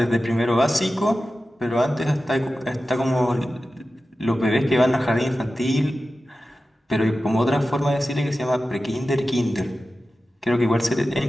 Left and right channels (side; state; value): both; normal; correlation 0.94